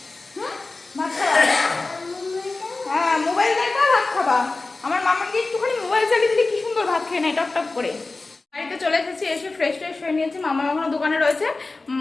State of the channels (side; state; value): right; quieter; 3.5 dB